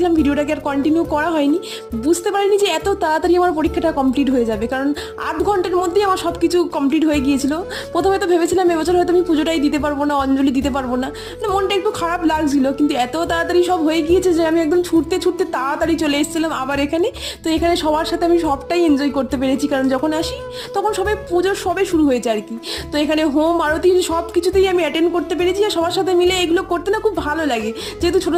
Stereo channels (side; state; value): both; identical; correlation 1.00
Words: ভিডিওটাকে আর কন্টিনিউ করা হয়নি। বুঝতে পারিনি যে এত তাড়াতাড়ি আমার পরীক্ষাটা কমপ্লিট হয়ে যাবে, কারণ 8 ঘন্টার মধ্যেই আমার সব কিছু কমপ্লিট হয়ে গিয়েছিল। প্রথমে তো ভেবেছিলাম এবছর হয়তো আমি পুজোটাই দিতে পারবো না, অঞ্জলি দিতে পারবো না, মানে মনটা একটু খারাপ লাগছিল। কিন্তু এত তাড়াতাড়ি সব হয়ে গিয়েছে যে আমি একদম ছুটতে ছুটতে তাড়াতাড়ি চলে এসেছিলাম আবার এখানে। তো এখানে সবার সাথে আমি সবটাই এনজয় করতে পেরেছি, কারণ যখন আসি তখন সবাই পুজোর সবে শুরু হয়েছে আর কি। তো এখানে হোম আরতি সব কিছুতেই আমি অ্যাটেন্ড করতে পেরেছি, আর সবার সাথে মিলে এগুলো করতে না খুব ভালো লাগে, যেহেতু ছোটো